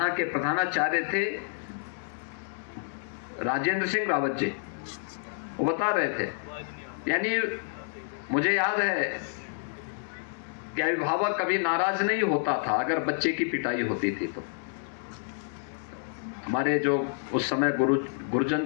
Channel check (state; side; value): silent; right; digital silence